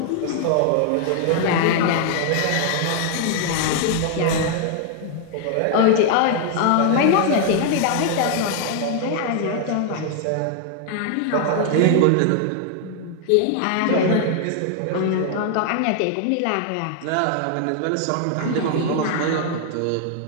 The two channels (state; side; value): different; both; correlation 0.00